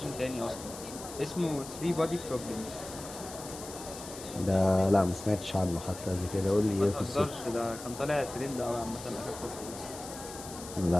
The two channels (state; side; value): noise; left; hiss, 13 dB below the sound